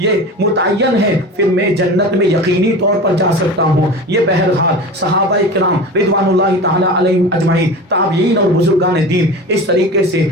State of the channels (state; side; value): normal; both; correlation 0.32